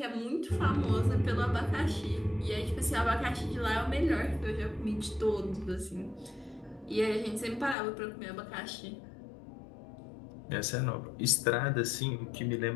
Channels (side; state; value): right; drops out; at 7.8 s